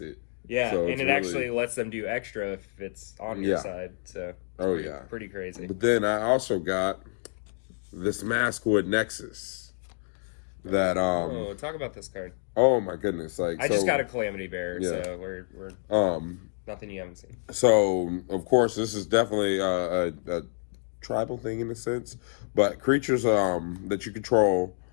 it. Yeah, so and it actually lets them do extra if it's on your side. So pretty crazy. But then I also got this Maskwood Nexus. That talk about this card. Oh my goodness! I just got a Calamity Bearer, so we're nothing you haven't seen. So of course this is definitely a tribal thing in a sense, but creatures that you control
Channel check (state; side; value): silent; right; digital silence